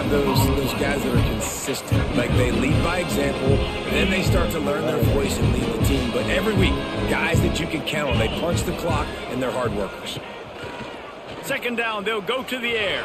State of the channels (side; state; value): both; identical; correlation 1.00